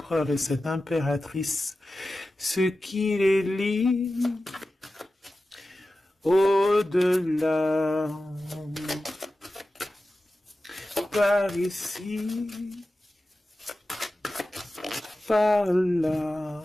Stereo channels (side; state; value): both; normal; correlation 0.94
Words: et cette impératrice, ce qui les lie au-delà, par ici, par là.